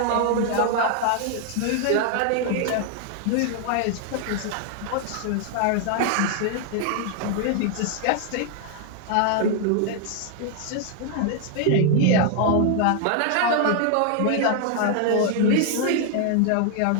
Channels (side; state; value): both; different; correlation 0.00